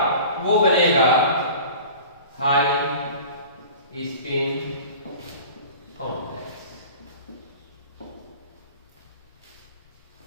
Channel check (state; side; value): inverted; both; correlation -0.41